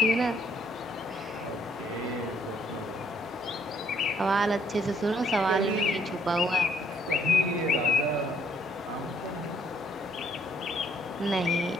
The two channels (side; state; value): both; normal; correlation 0.65